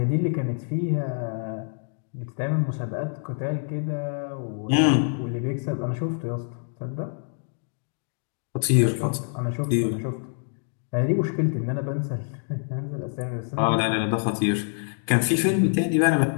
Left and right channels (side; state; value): right; silent; 61 dB below the other